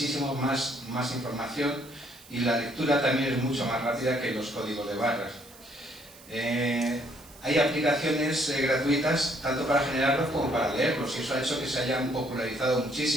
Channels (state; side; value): noise; right; hiss, 22 dB below the sound